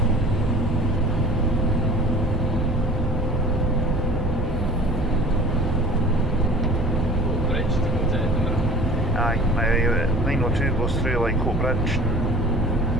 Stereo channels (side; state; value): both; normal; correlation 0.43